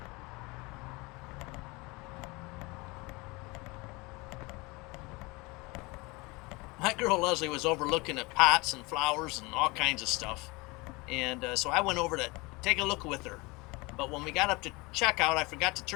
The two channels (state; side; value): quieter; right; 25.1 dB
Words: My girl Leslie was overlooking at pots and flowers and all kinds of stuff. And so I went over to take a look with her. But when we got up to checkout, I forgot to